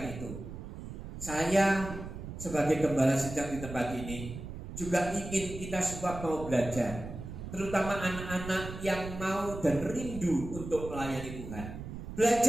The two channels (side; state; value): right; noise; rumble, 9 dB below the sound